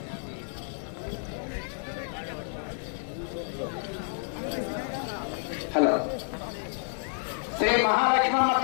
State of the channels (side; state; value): right; silent; 58 dB below the other